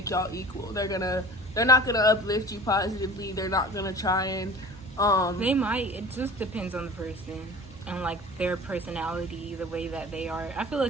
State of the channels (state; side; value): normal; both; correlation 0.41